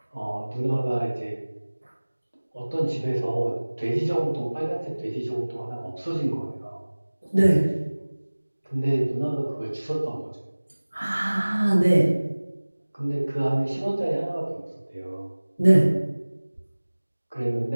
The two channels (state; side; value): inverted; both; correlation -1.00